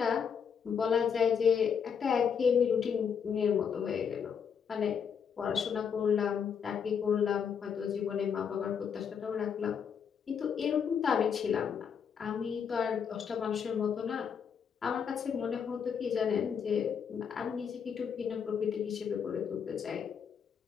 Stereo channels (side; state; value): right; quieter; 7.1 dB